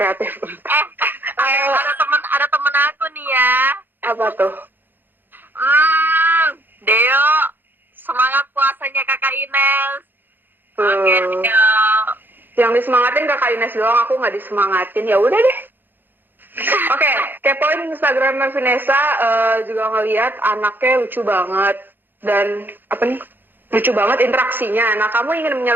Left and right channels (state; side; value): late; left; 0.094 ms